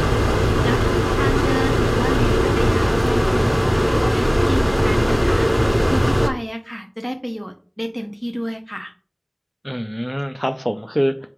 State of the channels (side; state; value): both; identical; correlation 1.00